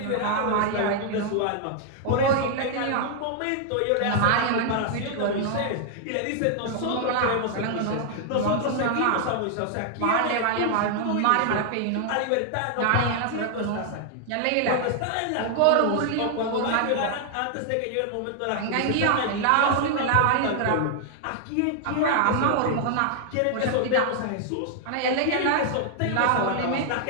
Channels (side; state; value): both; different; correlation 0.00